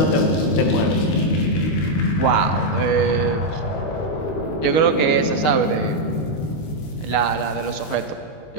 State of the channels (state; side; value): late; right; 19 ms